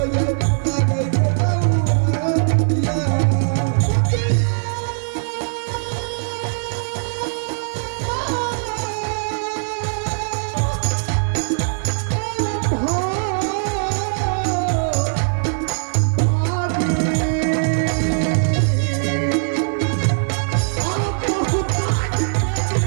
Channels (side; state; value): left; silent; 65 dB below the other